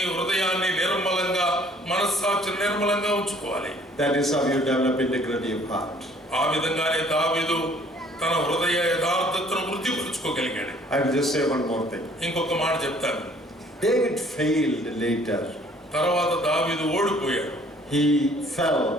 హృదయాన్ని నిర్మలంగా, మనస్సాక్షిని నిర్మలంగా ఉంచుకోవాలి. That is how you develop integrity of heart. ఆ విధంగానే దావీదు తన హృదయ యథార్థతను వృద్ధిపరుచుకోగలిగాడు. I will just say one more thing. ఇంకొక మాట చెప్తాను. David failed later. తర్వాత దావీదు ఓడిపోయాడు. He fell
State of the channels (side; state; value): both; normal; correlation 0.58